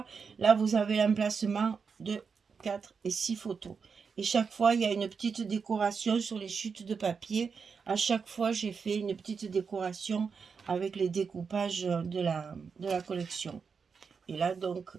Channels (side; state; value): left; quieter; 5.7 dB